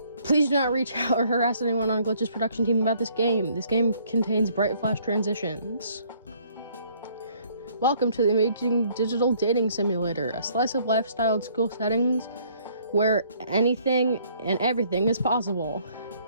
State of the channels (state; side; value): inverted; both; correlation -0.62